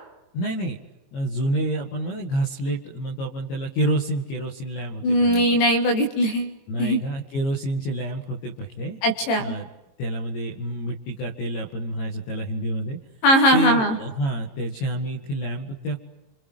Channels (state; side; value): late; right; 22 ms